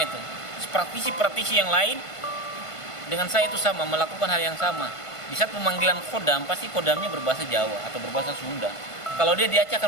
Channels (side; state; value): right; late; 1.5 ms